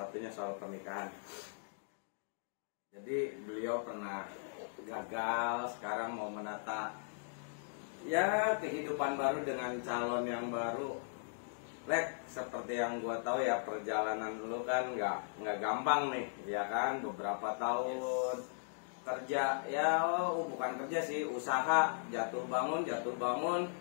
soal pernikahan. Jadi beliau pernah gagal, sekarang mau menata ya kehidupan baru dengan calon yang baru. Lek, seperti yang gua tahu ya, perjalanan dulu kan nggak gampang nih, ya kan, beberapa tahun kerja, ya bukan kerja sih, usaha, jatuh bangun,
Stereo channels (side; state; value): right; silent; digital silence